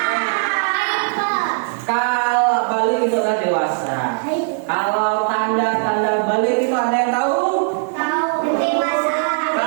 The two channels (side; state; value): left; silent; digital silence